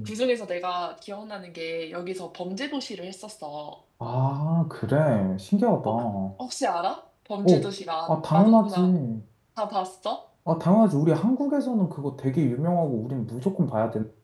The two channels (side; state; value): both; identical; correlation 1.00